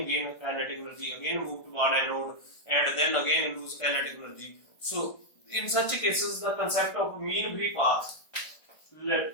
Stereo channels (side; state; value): right; late; 1.5 ms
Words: gain kinetic energy, again move toward anode, and then again lose kinetic energy. So in such cases, the concept of mean free path,